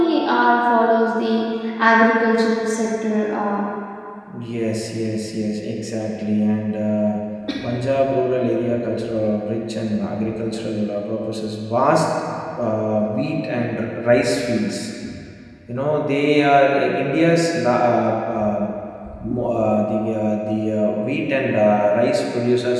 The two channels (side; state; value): both; identical; correlation 1.00